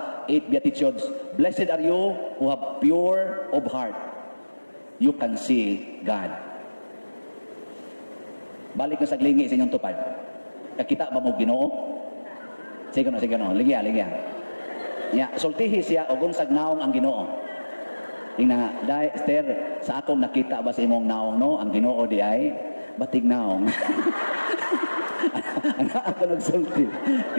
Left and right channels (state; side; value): inverted; both; correlation -1.00